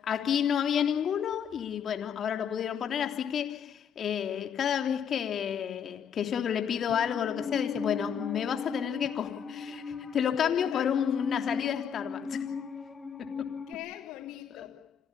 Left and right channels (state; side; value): quieter; right; 7.9 dB